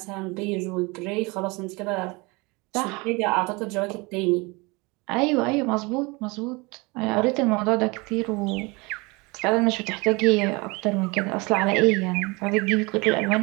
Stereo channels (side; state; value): left; quieter; 26.3 dB